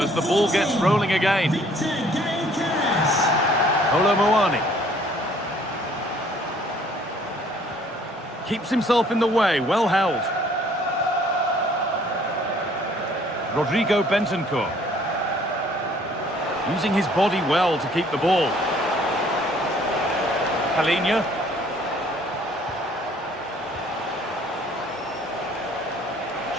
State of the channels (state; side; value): normal; both; correlation 0.59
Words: as the ball gets rolling again. Colomboani. Keeps himself in the way, well held. Rodrigo Bentancur. Using his body well to keep the ball. Palhinha.